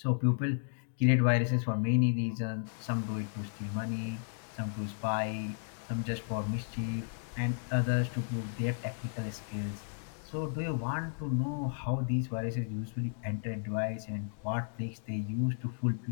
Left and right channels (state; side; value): silent; right; digital silence